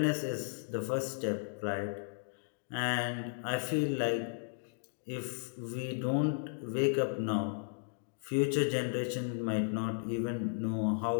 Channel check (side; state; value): right; silent; digital silence